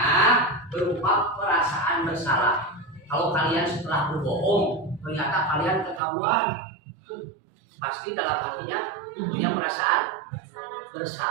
berupa perasaan bersalah. Kalau kalian setelah berbohong ternyata kalian ketahuan, pasti dalam hatinya punya perasaan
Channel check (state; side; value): drops out; left; at 6.0 s